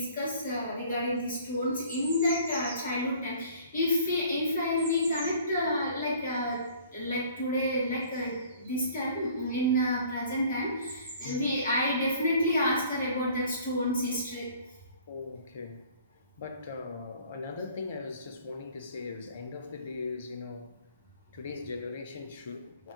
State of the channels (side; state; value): both; inverted; correlation -0.53